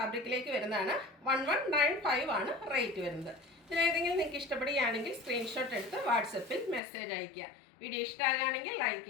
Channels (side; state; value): right; drops out; at 6.8 s